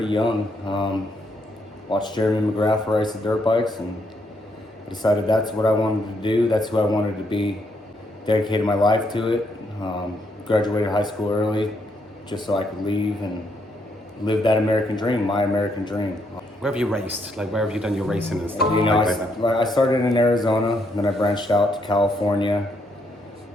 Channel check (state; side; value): normal; both; correlation 0.75